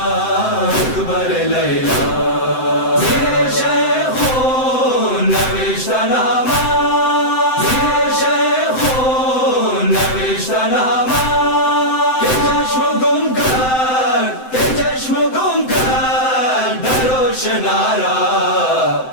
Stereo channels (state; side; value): late; right; 7.8 ms